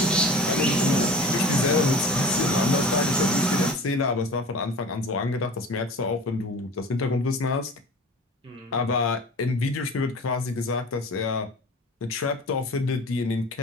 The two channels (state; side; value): normal; both; correlation 0.39